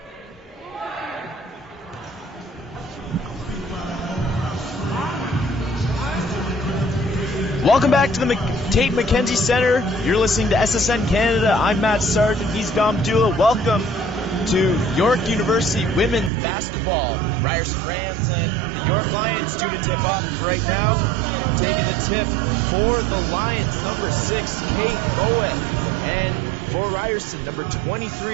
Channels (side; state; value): left; drops out; at 16.3 s